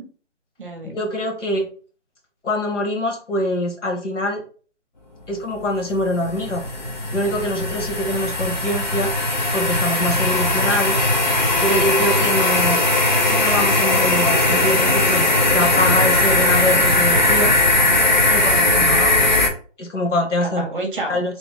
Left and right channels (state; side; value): normal; both; correlation 0.01